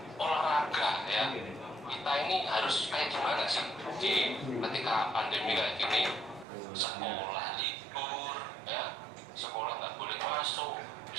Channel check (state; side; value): drops out; left; at 6.5 s